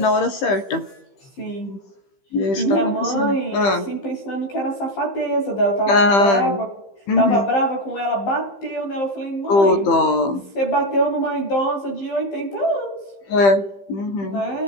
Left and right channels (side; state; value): right; late; 15 ms